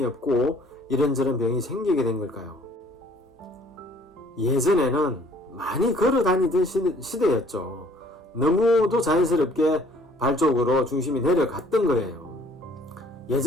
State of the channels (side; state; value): both; normal; correlation 0.57